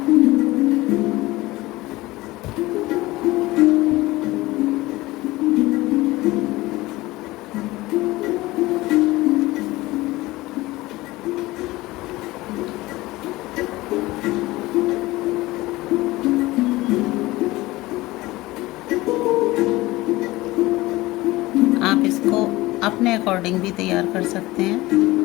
आप इसको अपने अकॉर्डिंग भी तैयार कर सकते हैं।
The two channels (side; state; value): right; quieter; 19.4 dB